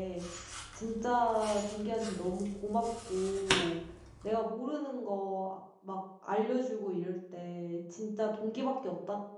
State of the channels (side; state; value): both; identical; correlation 1.00